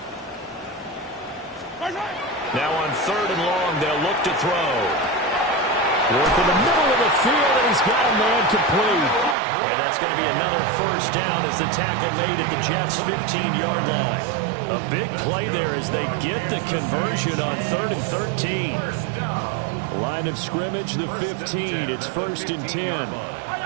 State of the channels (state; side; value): drops out; left; at 9.3 s